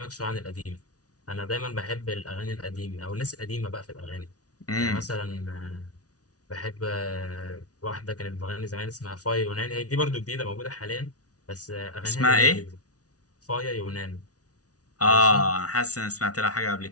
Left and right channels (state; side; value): late; right; 0.68 ms